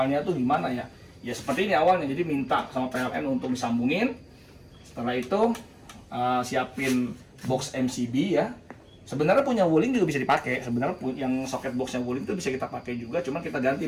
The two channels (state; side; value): identical; both; correlation 1.00